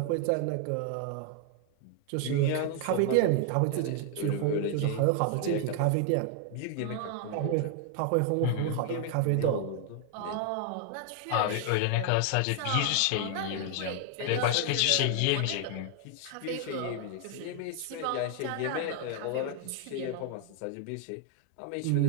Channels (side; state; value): both; different; correlation 0.00